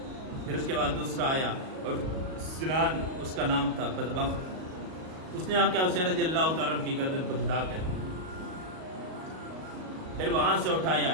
پھر اس کے بعد دوسرا آیا اور سنان اس کا نام تھا، بدبخت، اس نے آ کے حسین رضی اللہ تعالیٰ عنہ کی گردن کو جدا کر دیا، پھر وہاں سے اٹھایا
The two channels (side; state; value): left; late; 38 ms